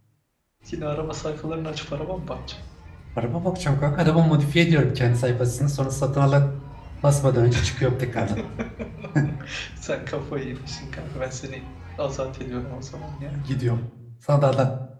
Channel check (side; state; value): both; identical; correlation 1.00